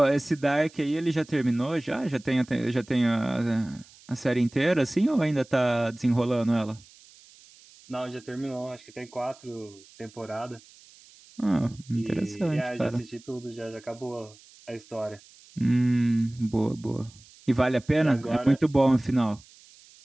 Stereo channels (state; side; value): noise; right; hiss, 25 dB below the sound